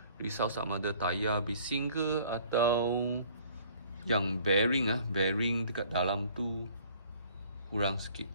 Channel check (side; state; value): both; inverted; correlation -0.55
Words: Risau sama ada tayar bising ke, atau yang bearing dekat dalam tu kurang sikit.